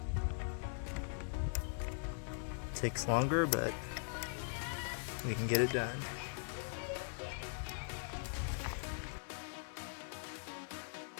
Takes longer, but we can get it done.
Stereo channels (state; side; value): silent; right; digital silence